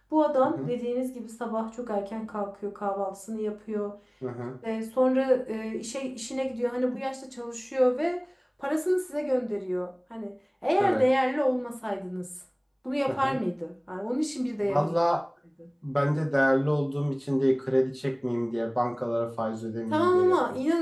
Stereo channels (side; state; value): both; identical; correlation 1.00